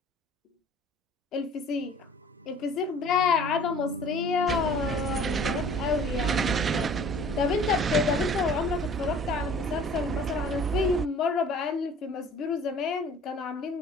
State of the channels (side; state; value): both; normal; correlation 0.49